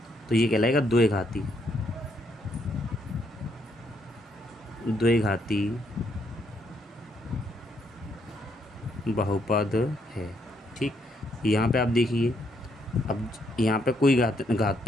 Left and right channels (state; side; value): normal; both; correlation 0.74